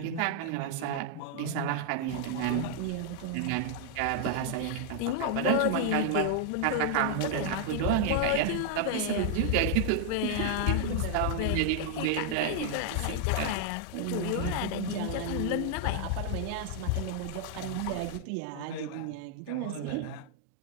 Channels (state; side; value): different; both; correlation 0.00